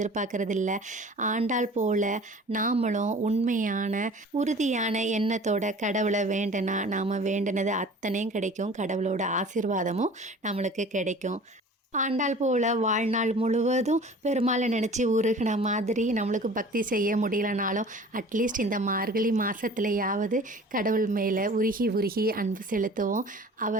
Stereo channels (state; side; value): normal; both; correlation 0.44